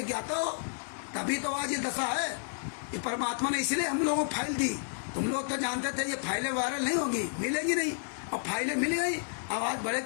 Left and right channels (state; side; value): silent; right; digital silence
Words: ज्ञाता हो, तभी तो आज ये दशा है। ये परमात्मा ने इसलिए हम लोगों को फाइल दी। तुम लोग तो जानते थे ये फाइलें वायरल नहीं होंगी, मिलेंगी नहीं, और फाइलें मिल गई। अब आज बड़े